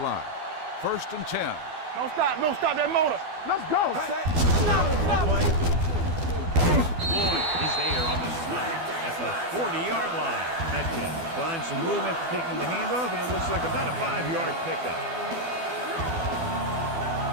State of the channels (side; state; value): left; late; 12 ms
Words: 1st and 10. Don't stop that motor. Let's go. Play. Lloyd is there on the snap at the 40-yard line. Metcalf finds some room after taking the handoff, and it looks like about a 5-yard pickup.